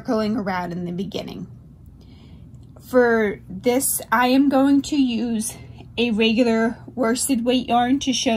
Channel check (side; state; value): both; identical; correlation 1.00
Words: around in the beginning. For this, I am going to use a regular worsted weight yarn to show